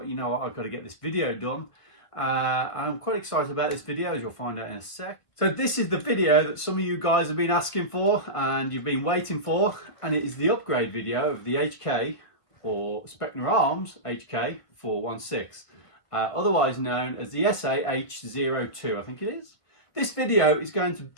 you know what, I've got to get this video done. I'm quite excited about this video, as you'll find out in a sec. So this is the video that some of you guys have been asking for and you've been waiting for, and it is the upgrade video of the HK, or Specna Arms HK416, otherwise known as the SA-H02, I think it is. This video is going to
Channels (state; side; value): late; right; 1.8 ms